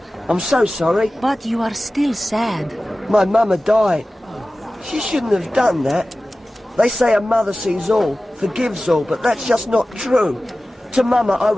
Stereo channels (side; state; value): both; normal; correlation 0.96